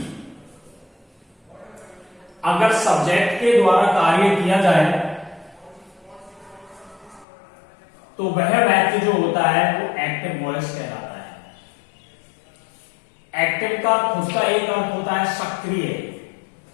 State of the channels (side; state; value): right; drops out; at 7.2 s